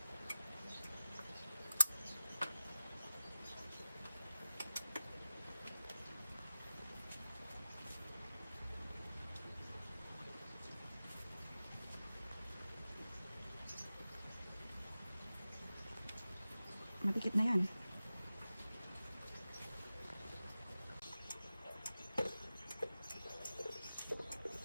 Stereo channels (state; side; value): inverted; both; correlation -0.94